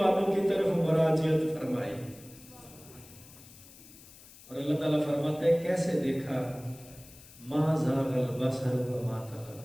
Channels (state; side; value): noise; left; hiss, 21 dB below the sound